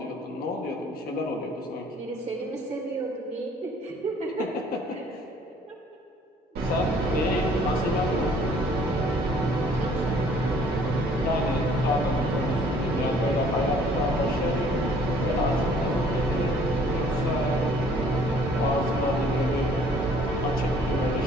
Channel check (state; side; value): normal; both; correlation 0.57